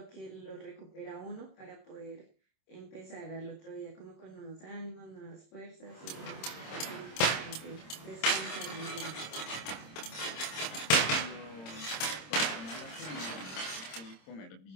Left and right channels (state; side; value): late; right; 26 ms